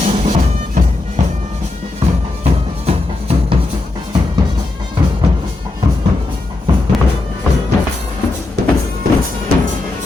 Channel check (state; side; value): quieter; right; 3.1 dB